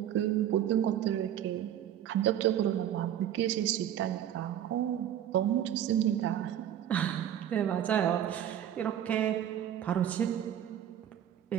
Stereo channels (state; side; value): quieter; left; 10.7 dB